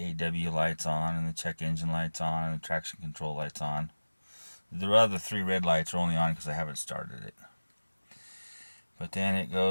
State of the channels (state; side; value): inverted; both; correlation -1.00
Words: lights on, and the check engine lights on, and the traction control lights on. The other three red lights are only on because I haven't started it. But then it